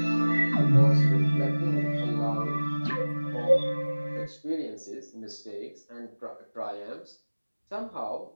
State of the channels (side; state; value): both; inverted; correlation -1.00